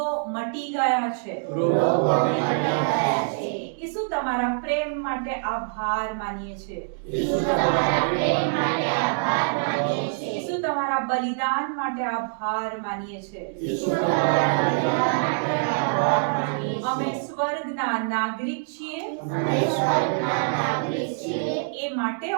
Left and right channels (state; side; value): silent; left; digital silence